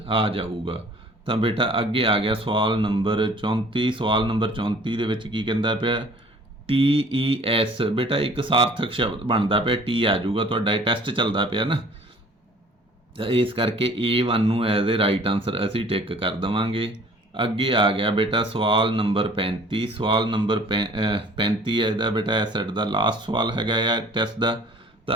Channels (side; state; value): both; normal; correlation 0.51